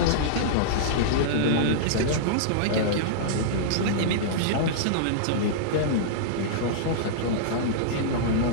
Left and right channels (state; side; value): different; both; correlation -0.03